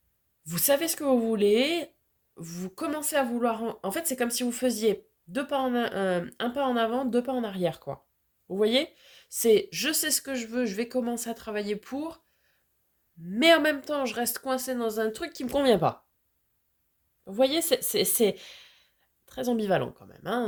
vous savez ce que vous voulez, vous commencez à vouloir... En fait, c'est comme si vous faisiez un pas en avant, deux pas en arrière, quoi. Vous voyez? C'est je sais ce que je veux, je vais commencer à travailler pour, mais en même temps, je reste coincé dans un truc qui me convient pas. Vous voyez, c'est très ambivalent quand même.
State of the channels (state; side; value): identical; both; correlation 1.00